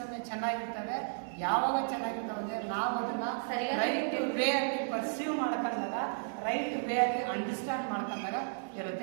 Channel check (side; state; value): left; silent; digital silence